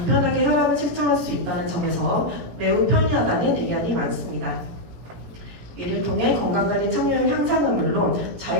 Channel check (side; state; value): left; late; 17 ms